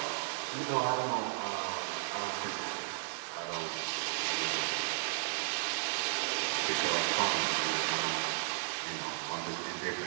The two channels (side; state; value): left; silent; 55 dB below the other